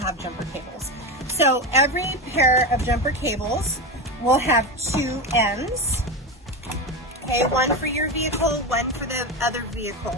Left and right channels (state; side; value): normal; both; correlation 0.18